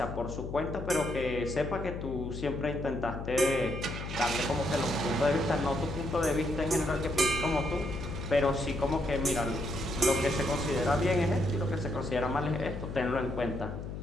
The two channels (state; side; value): noise; left; hum, 7 dB below the sound